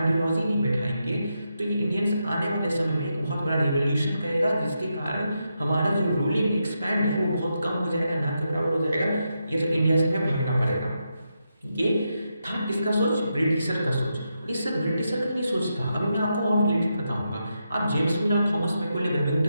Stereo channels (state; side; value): inverted; both; correlation -0.84